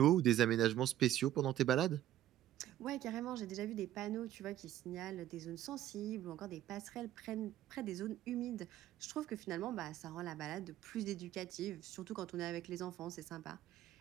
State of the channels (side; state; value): left; quieter; 12.7 dB